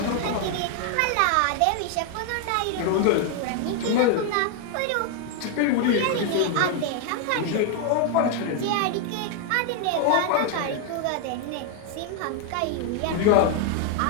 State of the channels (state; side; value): different; both; correlation 0.00